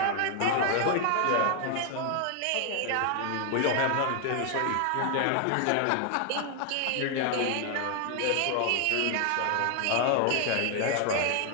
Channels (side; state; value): both; different; correlation 0.00